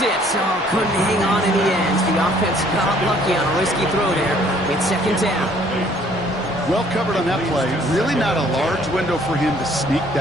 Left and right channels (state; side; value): normal; both; correlation 0.60